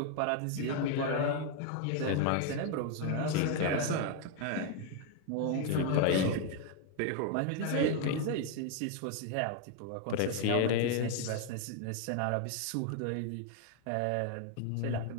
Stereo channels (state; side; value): different; both; correlation 0.00